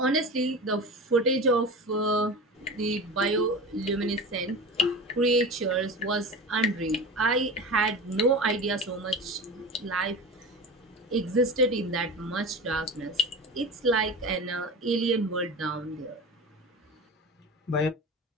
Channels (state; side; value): normal; both; correlation 0.31